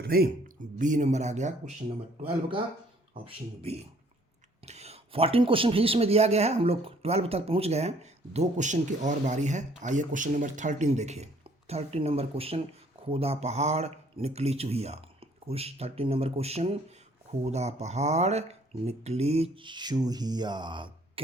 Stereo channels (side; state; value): both; normal; correlation 0.60